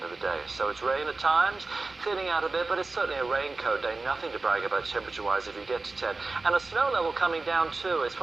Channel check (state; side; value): quieter; left; 3.6 dB